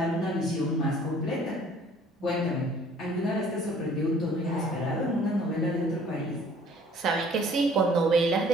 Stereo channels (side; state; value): both; normal; correlation 0.55